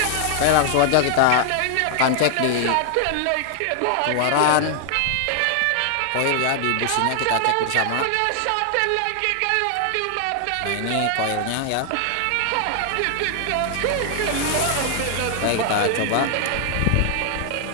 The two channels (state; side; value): different; both; correlation 0.00